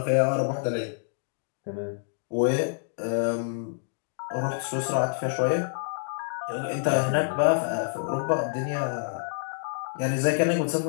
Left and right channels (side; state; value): right; silent; digital silence